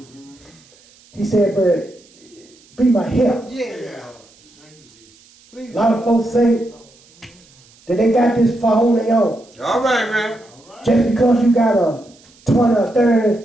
He said, but be my help. A lot of folks think that they got this far on their own. All right, man. Just because you got a 20 or 30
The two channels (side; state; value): right; noise; hiss, 28 dB below the sound